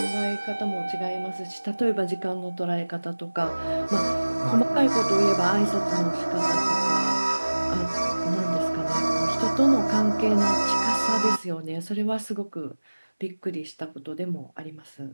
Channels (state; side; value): inverted; both; correlation -1.00